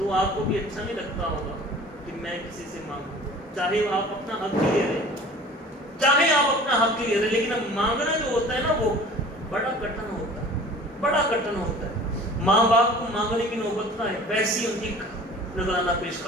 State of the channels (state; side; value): normal; both; correlation 0.44